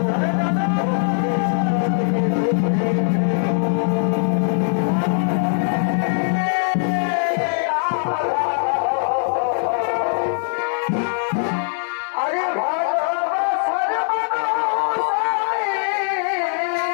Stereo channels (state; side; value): silent; right; digital silence